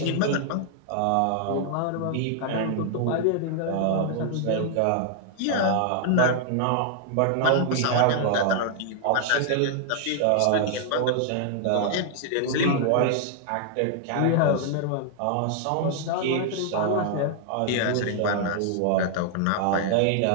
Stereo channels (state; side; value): different; both; correlation 0.00